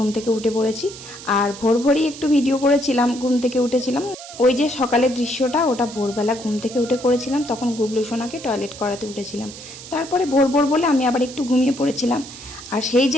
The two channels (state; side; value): noise; right; hiss, 14 dB below the sound